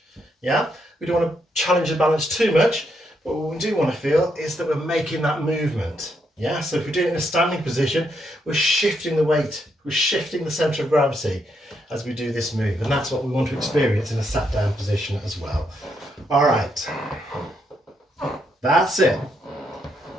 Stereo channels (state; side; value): normal; both; correlation 0.77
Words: Yeah? We don't want to challenge the balance too much, but what we do want to feel is that we're making that movement. Yeah? So if we're doing it in a standing position, we're shifting the weight, we're shifting the centre of gravity as we do this move. And that's what we want to experience in a sat down position as well. All right. That's it.